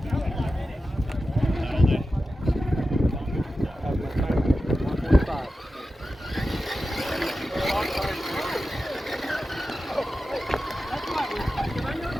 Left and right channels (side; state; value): both; normal; correlation 0.93